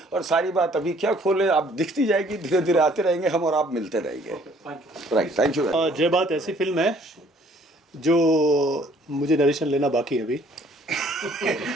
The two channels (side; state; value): both; normal; correlation 0.59